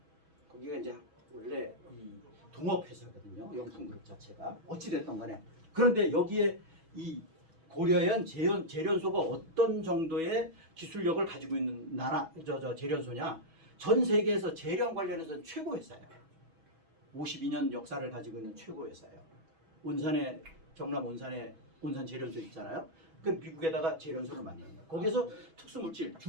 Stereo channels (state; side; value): late; left; 6.2 ms